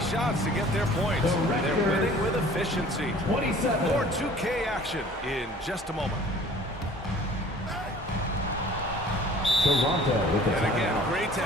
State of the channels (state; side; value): normal; both; correlation 0.49